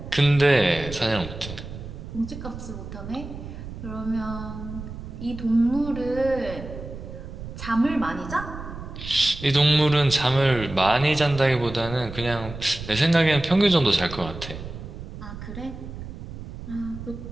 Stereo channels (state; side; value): noise; right; rumble, 11 dB below the sound